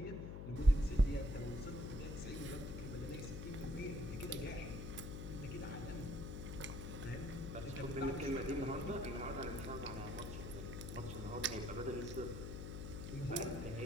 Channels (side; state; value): left; noise; hum, 6 dB below the sound